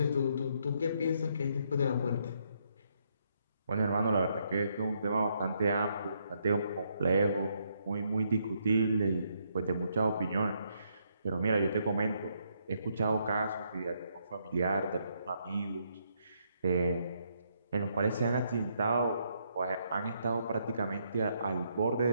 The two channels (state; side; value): inverted; both; correlation -0.74